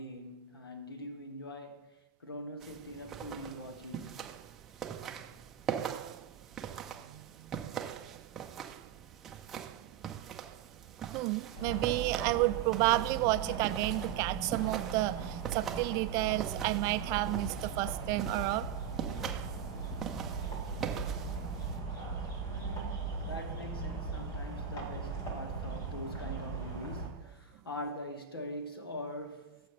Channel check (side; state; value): left; quieter; 9.2 dB